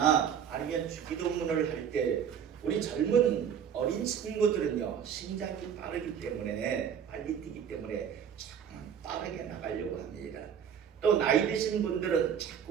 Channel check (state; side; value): quieter; left; 8.2 dB